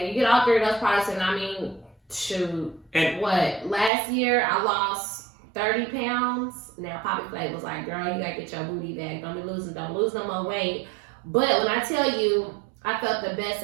you get all three of those products, and I mean, shoot, last year I lost 30 pounds. Now Poppy Flay was like, girl, you gotta get your booty back. Don't lose no more weight. But when I tell you, I felt the best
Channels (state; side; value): drops out; left; at 3.9 s